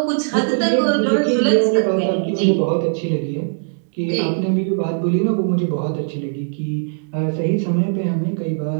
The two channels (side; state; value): left; silent; digital silence